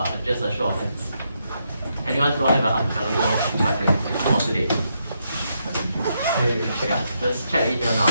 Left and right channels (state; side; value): inverted; both; correlation -0.80